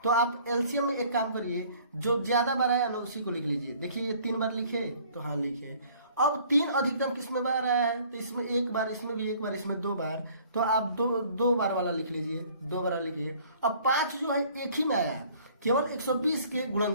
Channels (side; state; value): both; inverted; correlation -0.55